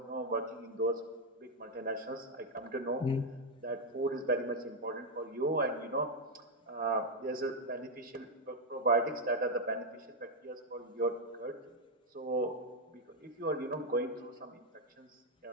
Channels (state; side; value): normal; both; correlation 0.01